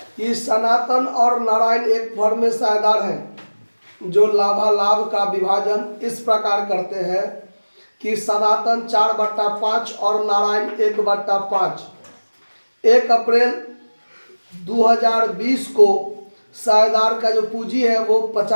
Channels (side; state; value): both; inverted; correlation -1.00